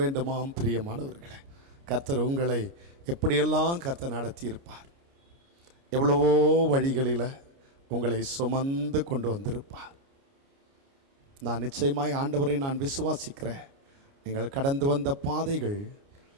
வேண்டுமாம். பிரியமானவர்களே, கர்த்தர் உங்களை எப்படியெல்லாம் கர்த்தர் நடத்தியிருப்பார். எவ்வளவோ வழிகளில் உங்களை சுமந்து கொண்டு வந்திருப்பார். நான் நிச்சயமாய் ஆண்டவரை நான் விசுவாசிக்கிறேன். நீங்கள் கடந்து வந்த பாதைகள்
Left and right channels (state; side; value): late; left; 29 ms